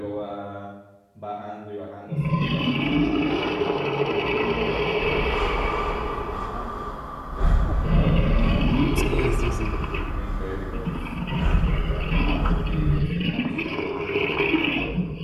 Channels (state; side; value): identical; both; correlation 1.00